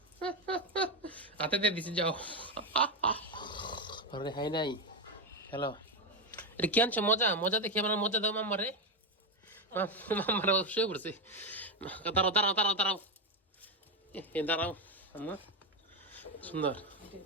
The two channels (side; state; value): both; normal; correlation 0.09